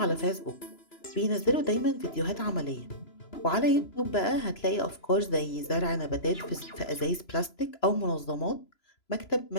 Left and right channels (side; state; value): right; late; 3.0 ms